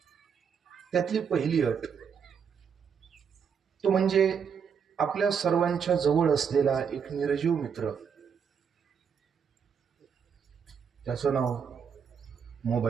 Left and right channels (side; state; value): left; quieter; 7.0 dB